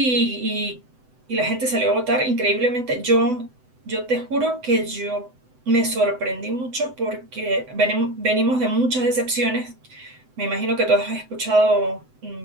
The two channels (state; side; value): late; left; 7.9 ms